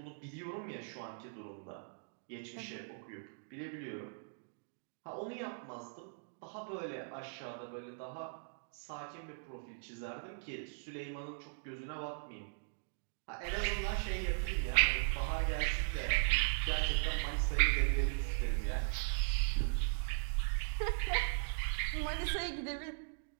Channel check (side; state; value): left; silent; digital silence